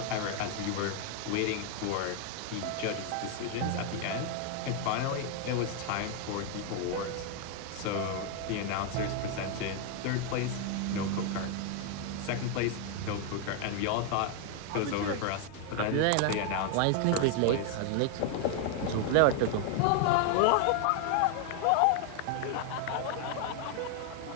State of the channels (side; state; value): both; different; correlation 0.00